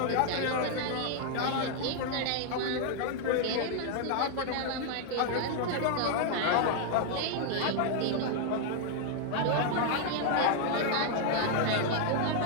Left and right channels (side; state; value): both; different; correlation 0.00